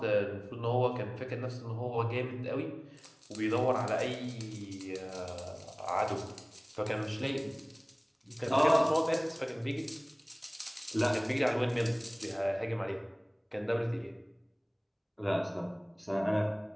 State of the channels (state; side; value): identical; both; correlation 1.00